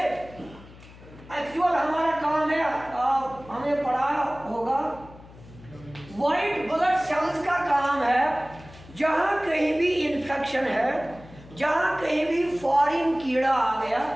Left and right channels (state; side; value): noise; left; hum, 20 dB below the sound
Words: एक्चुअल हमारा काम है, हमने पढ़ा होगा, व्हाइट ब्लड सेल्स का काम है जहाँ कहीं भी इन्फेक्शन है, जहाँ कहीं भी फॉरेन कीड़ा आ गया